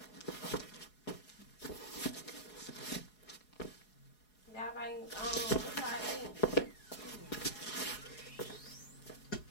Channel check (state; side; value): late; right; 4.7 ms